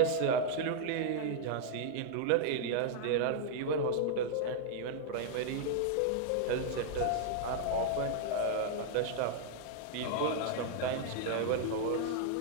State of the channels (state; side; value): different; both; correlation -0.01